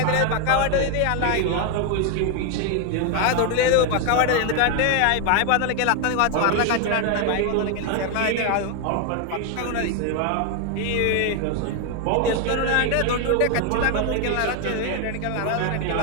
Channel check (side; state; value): both; different; correlation 0.01